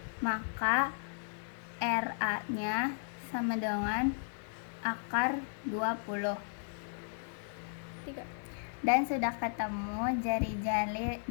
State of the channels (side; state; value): right; silent; digital silence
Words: maka RA-nya sama dengan akar 20. Dan sudah ketemu